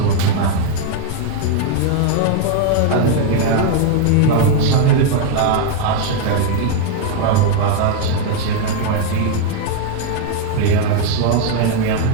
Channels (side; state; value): both; different; correlation 0.00